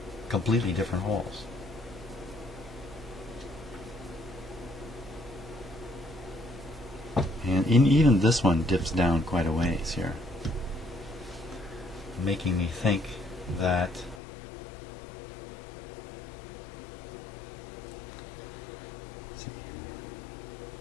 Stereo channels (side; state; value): right; drops out; at 14.2 s